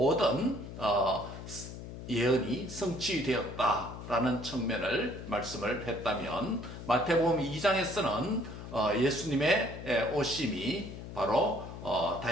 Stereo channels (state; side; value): noise; left; hum, 11 dB below the sound